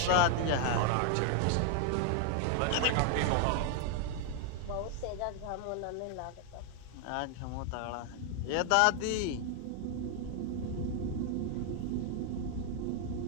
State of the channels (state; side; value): different; both; correlation 0.00